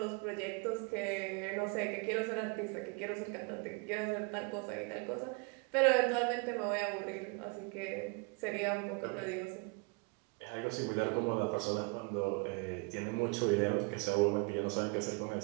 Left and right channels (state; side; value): quieter; left; 31.9 dB